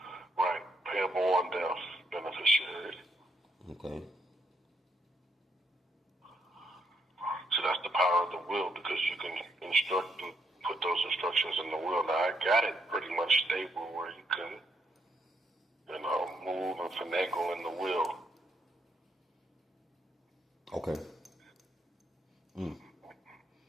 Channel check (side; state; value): both; normal; correlation 0.75